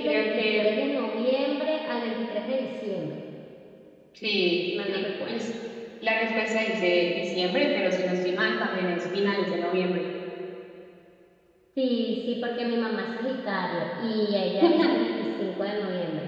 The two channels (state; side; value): identical; both; correlation 1.00